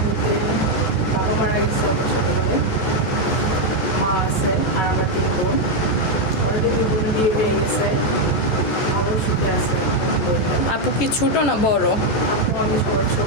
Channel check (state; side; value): late; right; 14 ms